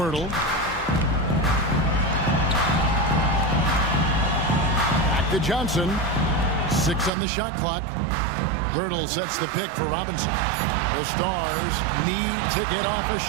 Back to Johnson. 6 on the shot clock. Pirtle sets the pick for Robinson. The Stars need to get off a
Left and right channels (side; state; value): left; drops out; at 7.1 s